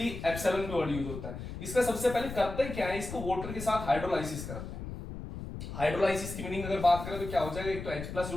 एप्सिलॉन का वर्ड यूज होता है। इसका सबसे पहले करते क्या है, इसको वाटर के साथ हाइड्रोलाइसिस करते हैं। हाइड्रोलाइसिस की मीनिंग अगर बात करें तो क्या हो जाएगा, एक तो H+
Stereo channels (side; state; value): left; noise; rumble, 8 dB below the sound